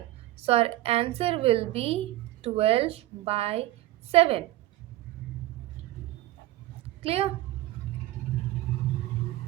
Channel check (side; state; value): left; quieter; 16.1 dB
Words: So our answer will be 12 by 7. Clear?